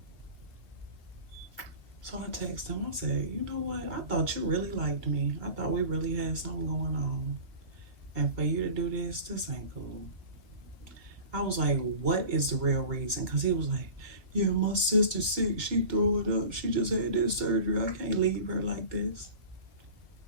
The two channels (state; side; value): late; left; 2.0 ms